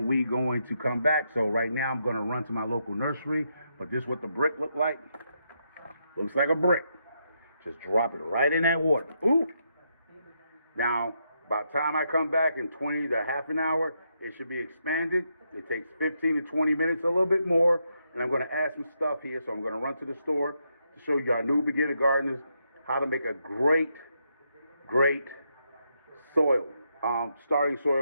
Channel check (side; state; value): both; inverted; correlation -0.80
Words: we going to come back. So right now I'm going to run to my local nursery. But this is what the brick look like. Looks like a brick. Just drop it right in that water. Ooh. Now, by the time I come back in 20 to half an hour, it should be expanded. It takes 15 to 20 minutes, a little bit more. And I'm going to add some stuff here. So I'm going to run to the store to show you our new beginner gardeners how to make a great soil, starting